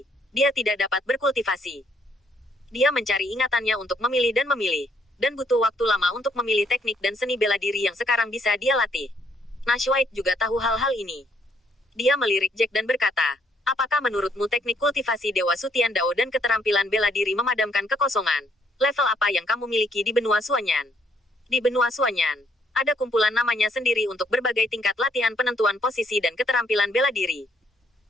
dia tidak dapat berkultivasi. Dia mencari ingatannya untuk memilih, dan butuh waktu lama untuk memilih teknik dan seni bela diri yang sekarang bisa dia latih. Nash White juga tahu hal-hal ini. Dia melirik Jack dan berkata, apakah menurutmu teknik kultivasi Dewa Sutian Dao dan keterampilan bela diri memadamkan kekosongan? Level apa yang kamu miliki di benua Suanyan? Di benua Suanyan, ada kumpulan namanya sendiri untuk berbagai tingkat latihan penentuan posisi dan keterampilan bela diri.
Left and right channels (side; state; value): both; normal; correlation 0.70